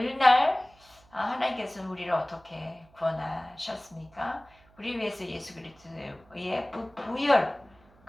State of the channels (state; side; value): noise; right; hum, 29 dB below the sound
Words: 하나님께서는 우리를 어떻게 구원하셨습니까? 우리 위해서 예수 그리스도의 부열